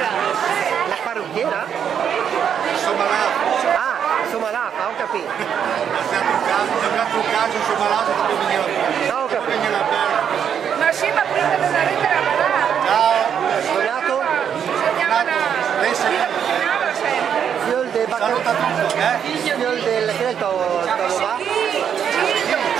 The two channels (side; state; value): left; quieter; 8.2 dB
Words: La parrucchiera? Somalata. Ah, Somalata, ho capito. Abbiamo un caso Somalata che veniva. No, ho capito. Ma sì, ma prima della lettera balà. Ciao. Donato? Lei sei Fiol del saluta tutto, Fiol del... che è il tuo va?